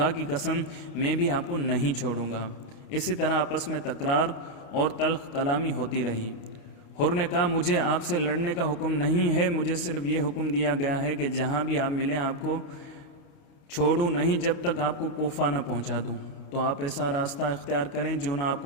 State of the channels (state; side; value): late; right; 28 ms